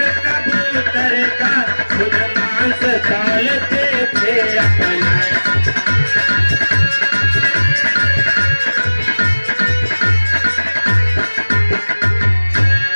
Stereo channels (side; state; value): both; inverted; correlation -1.00